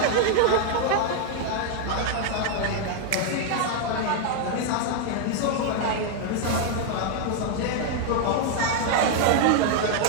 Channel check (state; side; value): different; both; correlation 0.00